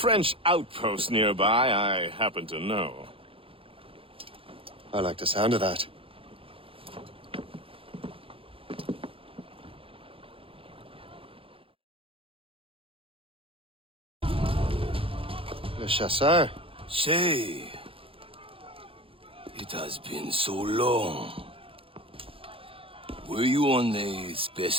outpost nearby I happen to know. I like the sound of that. Le Chasseur. Shay. It has been so long. Were you on a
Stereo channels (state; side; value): late; left; 0.27 ms